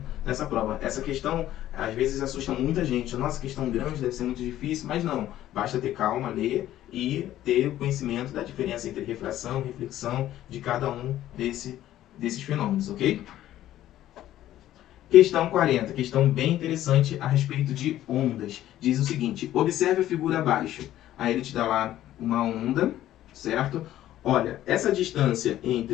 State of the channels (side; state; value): right; quieter; 13.2 dB